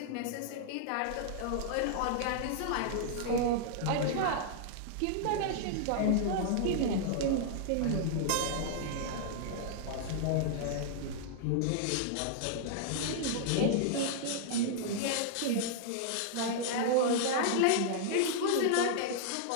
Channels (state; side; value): different; both; correlation -0.01